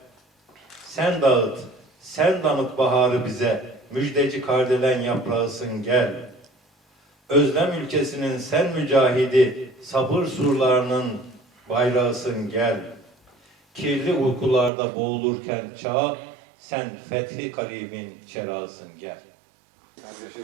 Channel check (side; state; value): left; drops out; at 14.7 s